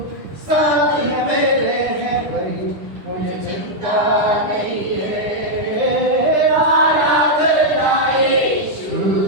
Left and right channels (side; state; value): left; late; 10 ms